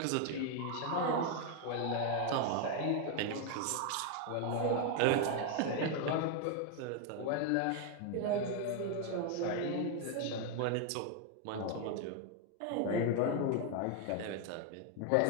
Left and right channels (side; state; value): both; different; correlation 0.01